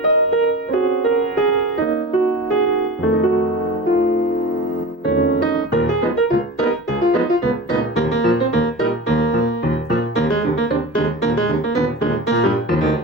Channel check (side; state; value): both; normal; correlation 0.33